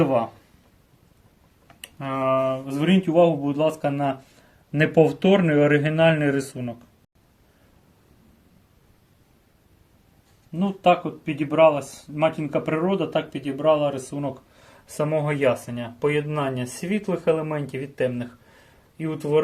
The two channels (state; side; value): identical; both; correlation 1.00